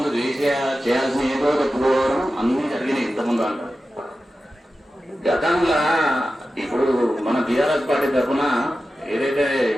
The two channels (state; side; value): normal; both; correlation 0.93